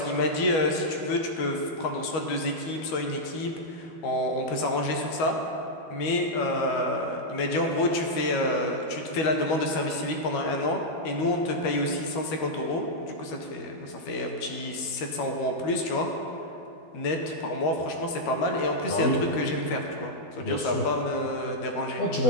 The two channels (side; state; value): right; late; 13 ms